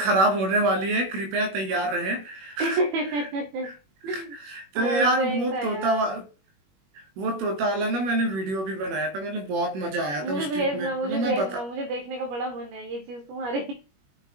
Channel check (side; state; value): left; late; 21 ms